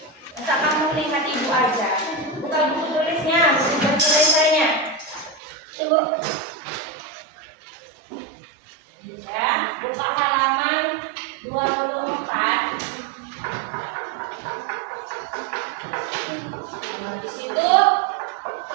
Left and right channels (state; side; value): drops out; left; at 5.4 s